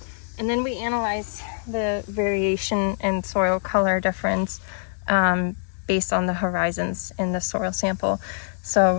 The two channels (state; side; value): silent; right; digital silence